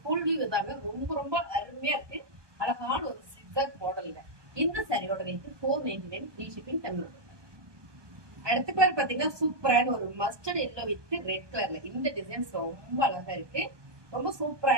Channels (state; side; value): late; left; 1.2 ms